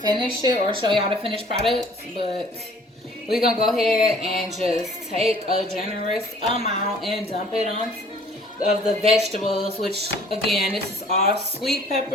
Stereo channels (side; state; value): both; normal; correlation 0.54